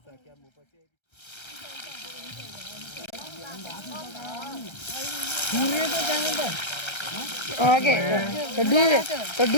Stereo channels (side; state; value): right; late; 1.3 ms